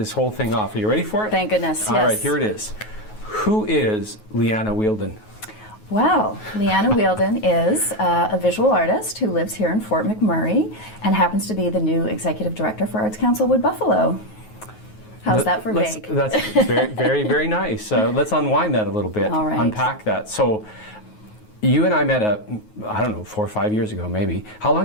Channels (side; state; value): right; late; 9.4 ms